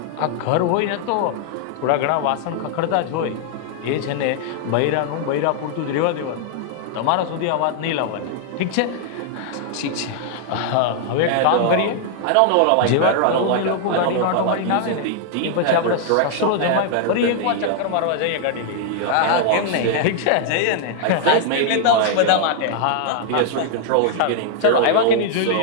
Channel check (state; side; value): different; both; correlation 0.00